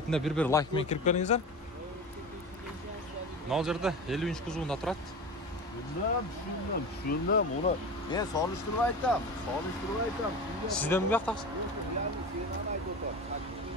бир лайк менен кирип келиңиздер. Мына жерде 50 кузовунда турат. Şundan onu ben soluşturup aytam. Sizden mi yaptınız?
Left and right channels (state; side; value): normal; both; correlation 0.29